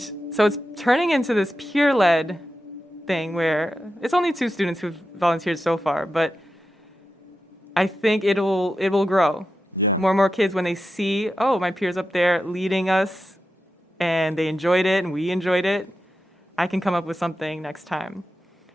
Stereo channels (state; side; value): normal; both; correlation 0.90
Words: so it's turning into this peer-led thing where it's only 2 students who've volunteered so far, but I think it will grow. Yeah. More and more kids, when they see, oh, my peers up there leading us, and they enjoyed it, and we enjoyed it, I can come up with something next time.